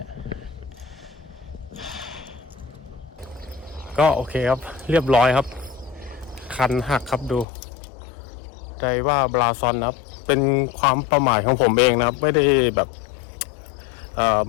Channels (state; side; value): drops out; right; at 7.5 s